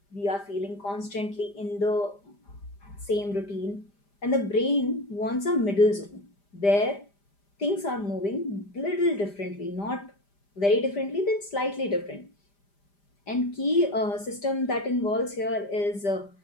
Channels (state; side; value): late; right; 5.0 ms